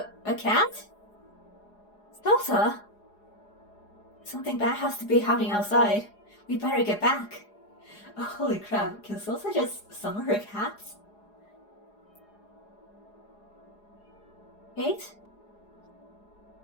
A cat? Salsa? Something bad has to be happening outside. We better get back. Oh, holy crap, can Salsa just summon her cats? Kate?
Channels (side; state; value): right; late; 4.8 ms